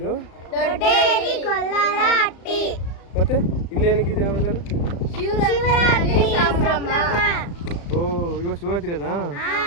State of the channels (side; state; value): right; late; 35 ms